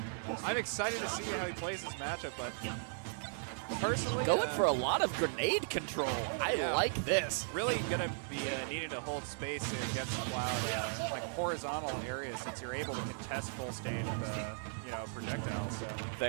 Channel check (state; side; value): silent; left; 53 dB below the other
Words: I'm excited to see how he plays this matchup, but personally, Going for a lot of grenade control. I like this. Really going to be needing to hold space against Cloud, like horizontal areas, since you're able to contest full stage with projectiles. So.